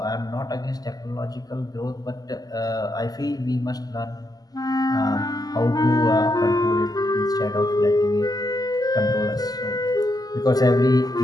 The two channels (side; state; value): right; late; 0.18 ms